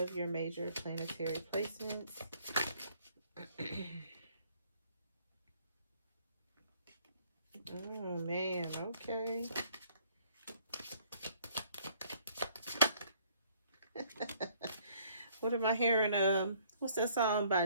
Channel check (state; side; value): inverted; both; correlation -0.62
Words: your major planetary placements. Oh man, okay. What am I hearing? What's that song by